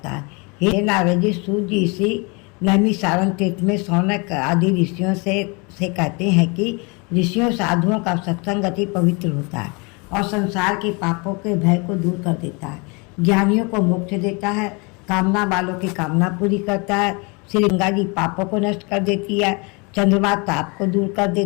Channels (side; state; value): right; quieter; 30.2 dB